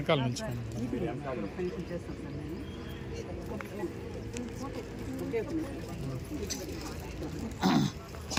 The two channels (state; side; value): identical; both; correlation 1.00